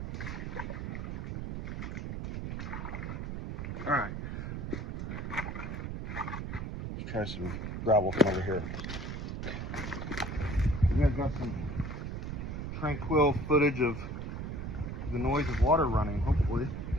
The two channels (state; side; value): noise; right; rumble, 5 dB below the sound